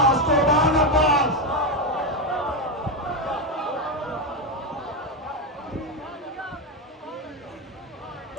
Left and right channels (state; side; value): normal; both; correlation 0.09